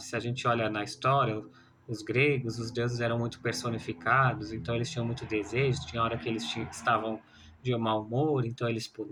Se a gente olha na história, os gregos, os deuses eram muito personificados, então eles tinham muito desejo. Tinha hora que eles estavam de mau humor, então eles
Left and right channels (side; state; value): both; identical; correlation 1.00